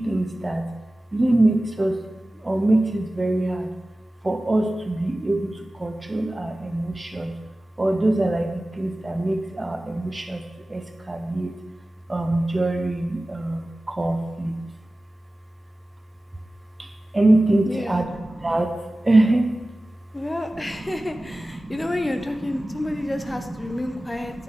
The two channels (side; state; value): both; normal; correlation 0.96